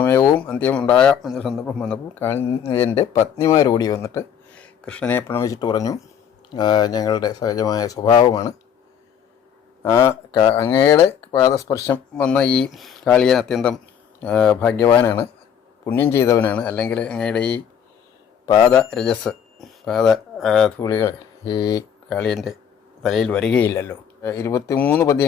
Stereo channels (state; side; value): quieter; right; 8.3 dB